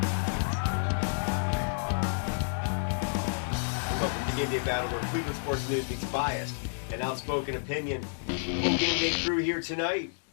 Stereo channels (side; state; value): right; silent; 58 dB below the other